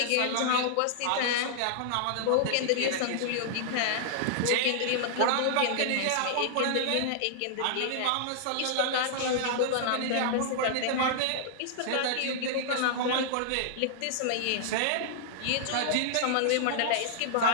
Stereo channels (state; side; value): different; both; correlation -0.01